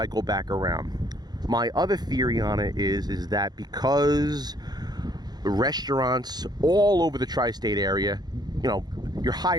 back around. My other theory on it is that because restaurants all over the tri-state area, your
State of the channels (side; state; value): left; late; 0.20 ms